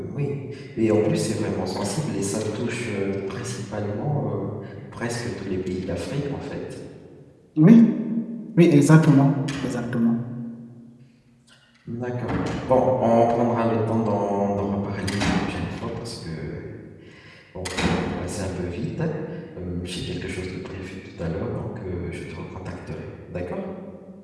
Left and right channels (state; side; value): identical; both; correlation 1.00